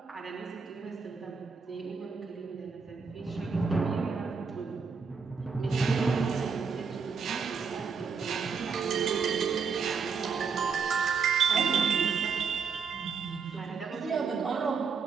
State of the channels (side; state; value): left; quieter; 5.6 dB